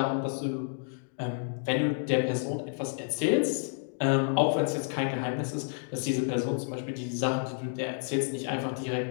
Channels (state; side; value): silent; right; digital silence